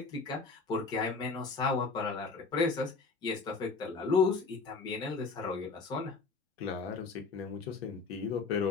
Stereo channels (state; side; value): quieter; right; 4.4 dB